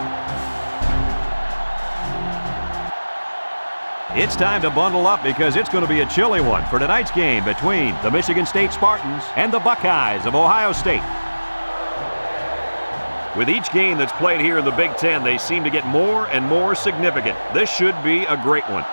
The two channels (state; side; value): inverted; both; correlation -1.00